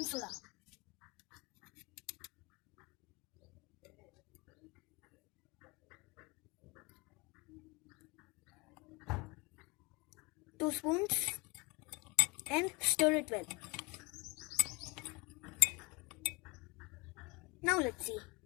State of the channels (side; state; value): right; quieter; 27.7 dB